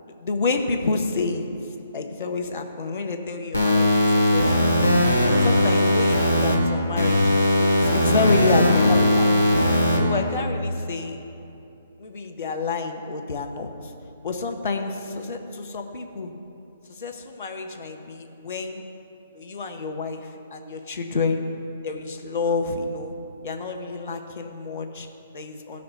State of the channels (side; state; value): both; inverted; correlation -0.74